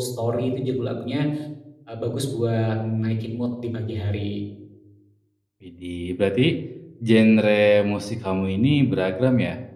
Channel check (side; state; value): both; identical; correlation 1.00